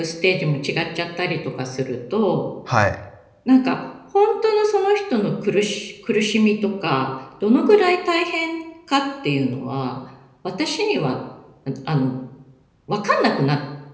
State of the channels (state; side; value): identical; both; correlation 1.00